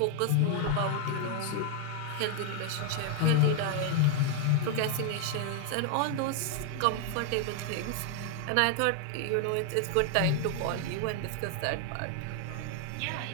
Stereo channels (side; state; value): both; different; correlation 0.00